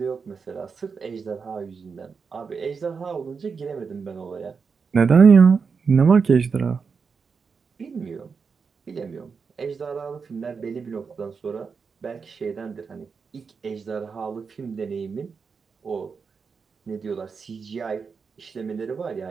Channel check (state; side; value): quieter; left; 5.5 dB